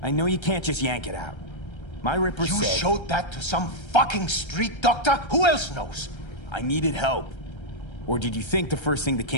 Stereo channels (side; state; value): right; late; 1.3 ms